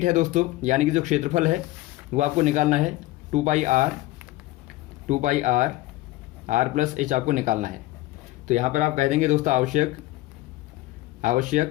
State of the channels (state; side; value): quieter; right; 17.8 dB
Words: है दोस्तों, यानी कि जो क्षेत्रफल है वो आपको निकालना है 2 पाई r प्लस h आपको निकालना है। तो यहाँ पर आप कह देंगे दोस्तों